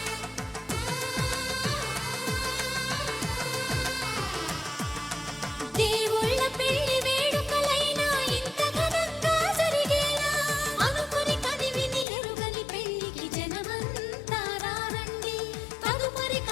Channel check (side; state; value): right; drops out; at 12.1 s